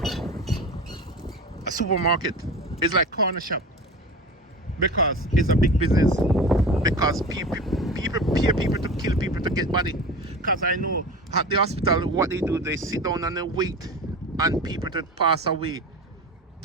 a supermarket. It's like corner shop, because it's a big business. Because people pay people to kill people to get body. Because I know at the hospital what they do, they sit down and they wait and people to pass away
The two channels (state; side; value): normal; both; correlation 0.32